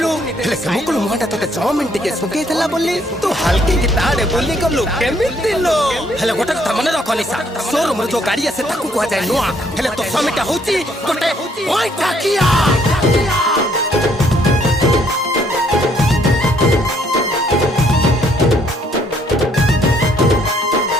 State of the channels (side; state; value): both; normal; correlation 0.67